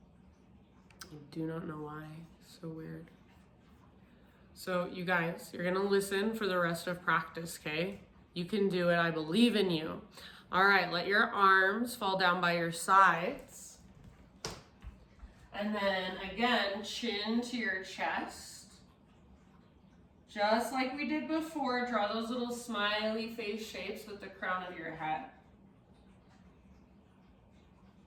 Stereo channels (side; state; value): both; identical; correlation 1.00